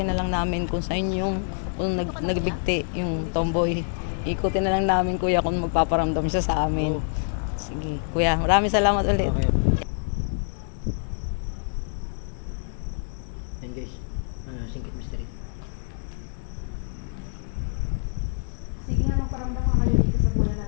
na lang namin kung saan yung kung nagbigti yung tomboy. Ikutin na lang namin kuya kung magpaparamdam siya sa amin. Oo. Sige. Kuya, maraming salamat ulit. Okay. Yan guys. Singkit mystery. Sige nga, magparamdam ka kayo dito sa bulan na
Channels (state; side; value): silent; right; digital silence